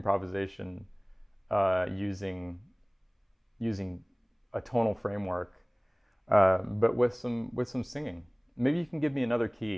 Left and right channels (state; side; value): identical; both; correlation 1.00